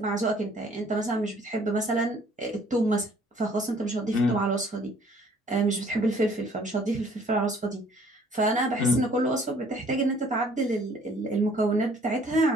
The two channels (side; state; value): both; normal; correlation 0.58